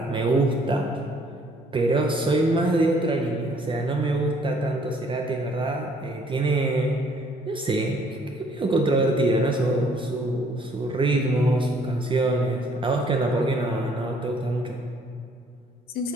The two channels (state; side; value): normal; both; correlation 0.62